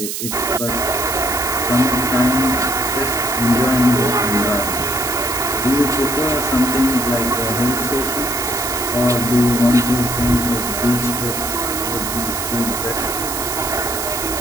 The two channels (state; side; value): noise; right; hiss, 4 dB below the sound